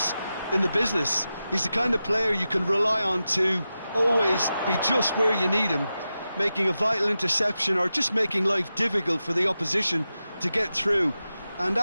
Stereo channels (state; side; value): inverted; both; correlation -0.92